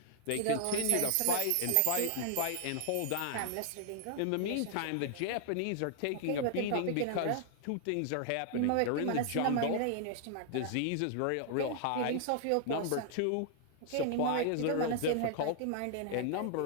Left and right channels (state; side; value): different; both; correlation -0.01